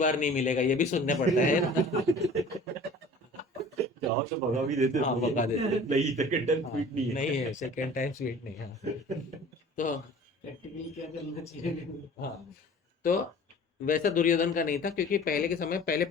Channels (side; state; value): both; normal; correlation 0.45